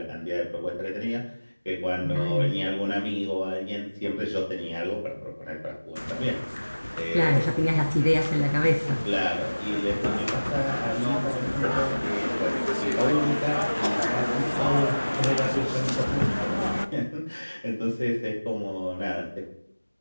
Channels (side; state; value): both; inverted; correlation -1.00